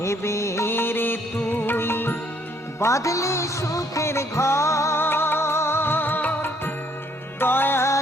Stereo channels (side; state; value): both; normal; correlation 0.66